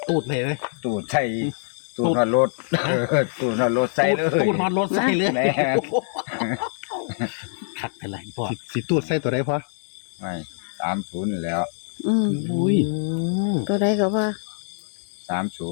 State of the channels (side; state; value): right; silent; digital silence